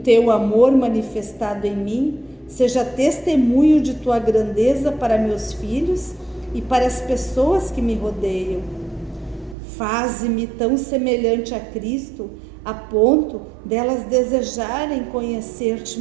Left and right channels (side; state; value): left; drops out; at 9.6 s